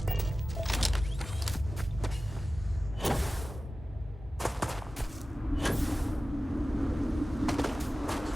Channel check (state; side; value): normal; both; correlation 0.96